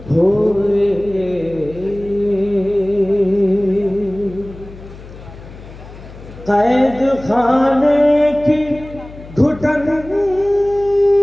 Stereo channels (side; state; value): left; noise; hum, 17 dB below the sound